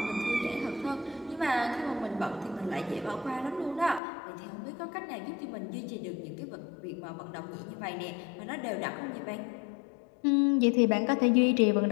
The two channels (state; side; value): drops out; right; at 4.0 s